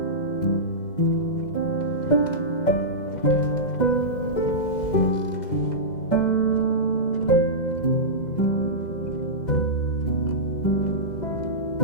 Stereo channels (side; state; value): right; late; 2.0 ms